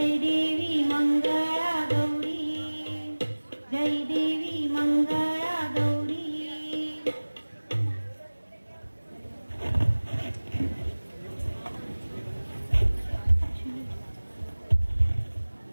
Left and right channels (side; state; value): both; inverted; correlation -1.00